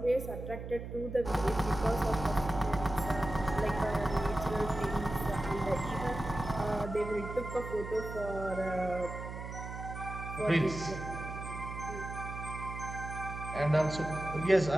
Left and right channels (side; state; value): right; noise; hum, 8 dB below the sound